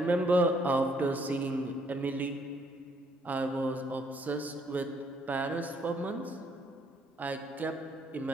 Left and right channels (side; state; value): both; normal; correlation 0.68